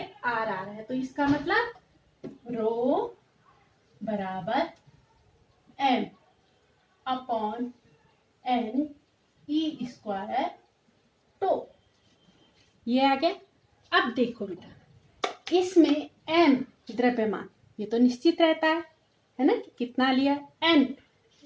R है, तो इसका मतलब रो बराबर M upon N E square. तो ये आ गया। अब देखो बेटा, इसमें M द्रव्यमान, ये तो निश्चित रहता है ना, कि कितना लिया, N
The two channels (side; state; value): both; identical; correlation 1.00